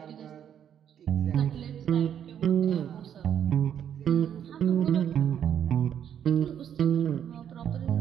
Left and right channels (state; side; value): quieter; left; 9.2 dB